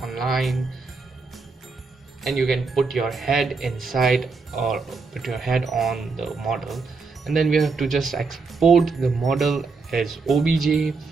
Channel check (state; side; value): quieter; left; 4.3 dB